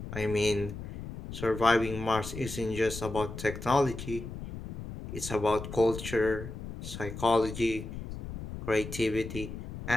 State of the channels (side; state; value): left; noise; rumble, 9 dB below the sound